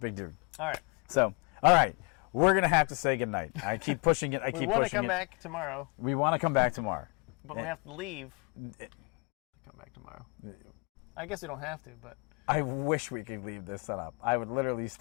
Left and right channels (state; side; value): quieter; right; 32.1 dB